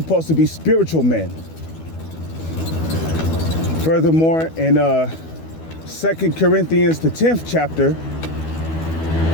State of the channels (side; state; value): right; late; 12 ms